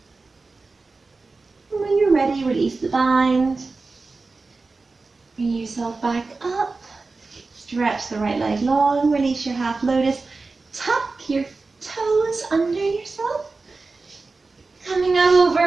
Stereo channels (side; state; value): left; quieter; 3.8 dB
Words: When you're ready, release the bind. Bring yourself back up. Stretch the right leg long, release your half lotus. Tuck your toes under yourself. Coming